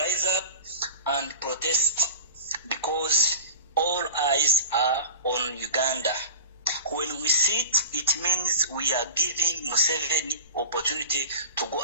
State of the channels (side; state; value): both; inverted; correlation -0.38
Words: up and protest because all eyes are on Uganda. When we sit, it means we are giving Museveni opportunity to go